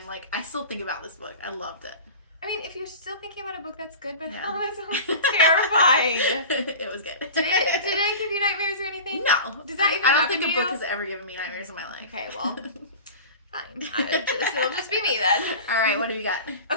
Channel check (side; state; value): both; inverted; correlation -0.34